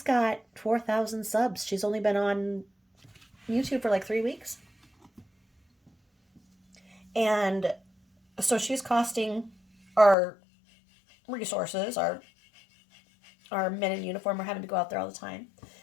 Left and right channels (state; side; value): drops out; right; at 10.2 s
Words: got 4,000 subs. She's only been on YouTube for like 3 weeks. And so she's costing our resources, our men in uniform are having to go out there all the time.